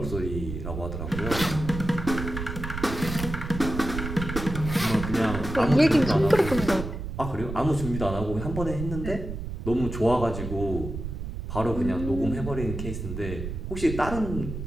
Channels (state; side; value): noise; right; rumble, 6 dB below the sound